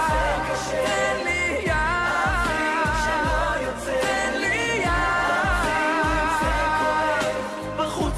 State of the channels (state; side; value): identical; both; correlation 1.00